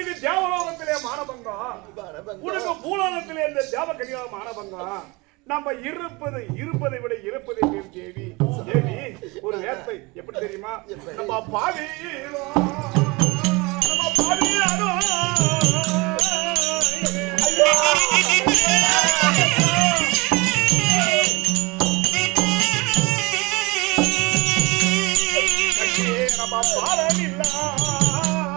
தேவலோகத்திலே மானபங்கம், உனக்கு பூலோகத்திலே இந்த தேவகன்யா மானபங்கம். நம்ம இருப்பதை விட இறப்பதை பேர் தேவி. தேவி ஒரு வேர்த்தை எப்படி தெரியுமா? நம்ம பாவியிலோ நம்ம பாவமில்லா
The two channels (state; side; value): quieter; left; 25.3 dB